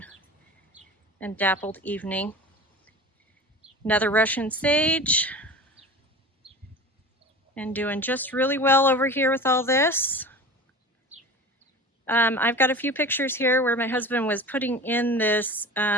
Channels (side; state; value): both; normal; correlation 0.35